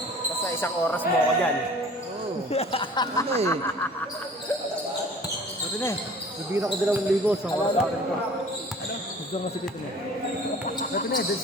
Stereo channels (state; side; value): normal; both; correlation 0.47